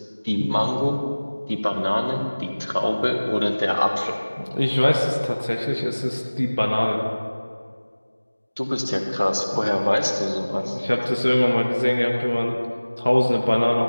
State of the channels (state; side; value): inverted; both; correlation -1.00